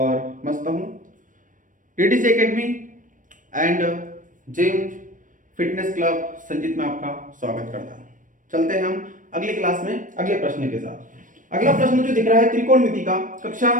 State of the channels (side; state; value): left; late; 0.38 ms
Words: मस्त हूँ। DDC academy and gym fitness club Sanjeet में आपका स्वागत करता हूँ। चलते हैं हम अगली क्लास में अगले प्रश्न के साथ। अगला प्रश्न जो दिख रहा है त्रिकोणमिति का कक्षा